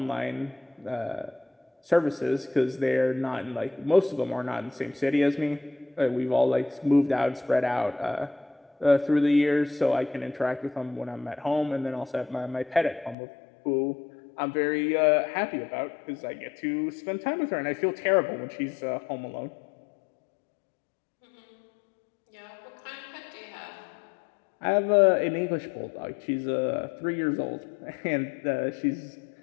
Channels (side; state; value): right; drops out; at 13.2 s